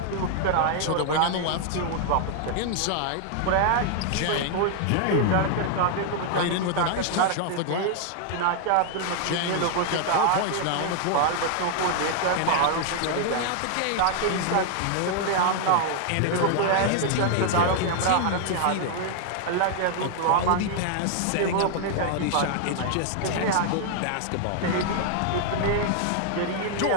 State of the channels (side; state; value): both; different; correlation 0.00